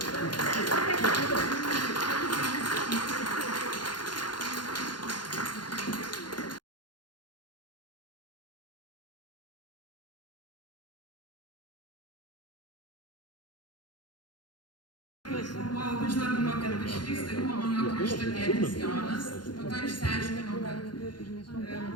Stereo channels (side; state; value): right; late; 0.71 ms